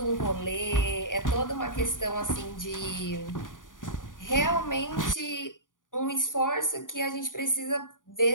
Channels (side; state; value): right; late; 0.88 ms